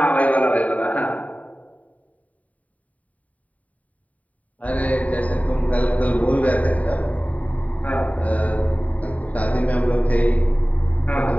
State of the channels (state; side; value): late; right; 0.070 ms